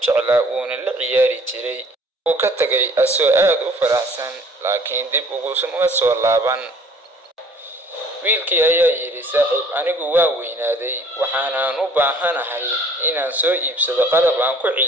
wuuna la ciyaari jiray. wuu ka tagay asoo aad u faraxsan laakiin dib uguma soo laaban. wiilkii ayaa yidhi, saaxiib, anigu waa weynaaday waxaanaan u baahanahay inaan soo iibsado qalab aan ku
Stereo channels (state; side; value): normal; both; correlation 0.53